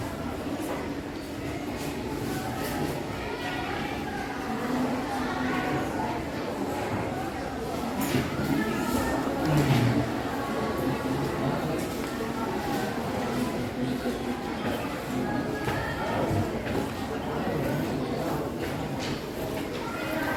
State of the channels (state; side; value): identical; both; correlation 1.00